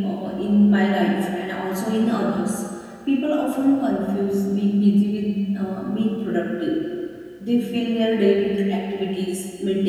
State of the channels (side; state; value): both; identical; correlation 1.00